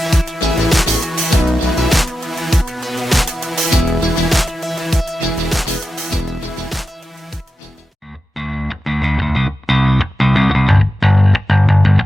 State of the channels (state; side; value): normal; both; correlation 0.91